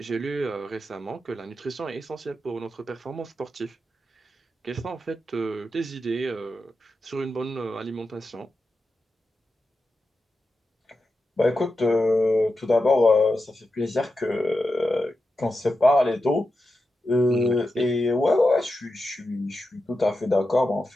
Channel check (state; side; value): normal; both; correlation 0.90